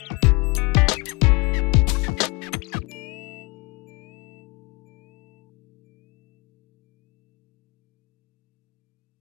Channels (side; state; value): right; quieter; 27.4 dB